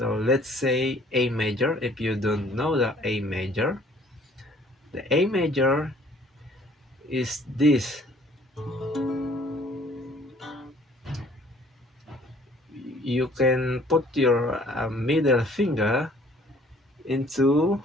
let's say A major. If you don't know the A major is this. You can put your middle finger into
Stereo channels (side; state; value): both; normal; correlation 0.57